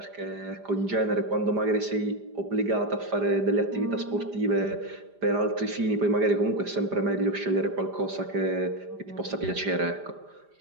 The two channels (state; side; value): late; left; 5.0 ms